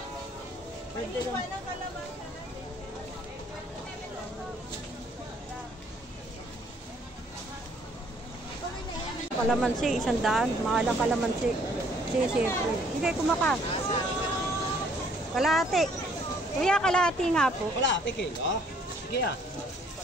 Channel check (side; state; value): both; normal; correlation 0.62